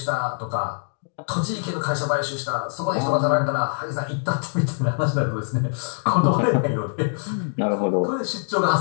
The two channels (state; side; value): silent; right; digital silence